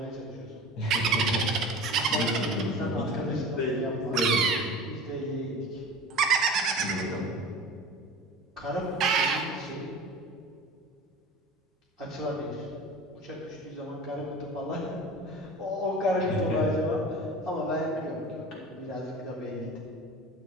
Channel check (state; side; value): normal; both; correlation 0.36